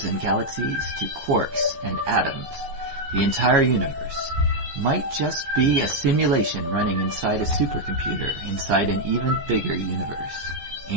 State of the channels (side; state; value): left; late; 15 ms